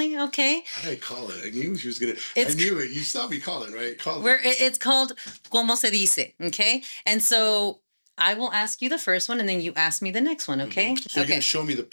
okay? How did I call it? I knew she was gonna. It's- I knew it. You saw me call it, right? Call Where it. it's called Como se dice, okay? And so I will ask you the first one, and then you ask me the next one, okay? So you're Okay. gonna show me the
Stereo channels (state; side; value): inverted; both; correlation -1.00